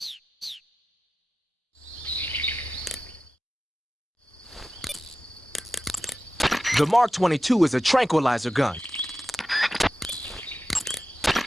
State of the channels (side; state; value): both; normal; correlation 0.94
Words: The Mark 22 is a tranquilizer gun.